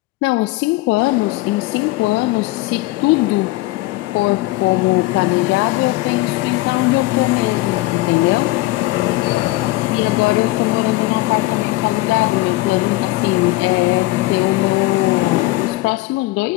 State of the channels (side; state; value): right; quieter; 19.4 dB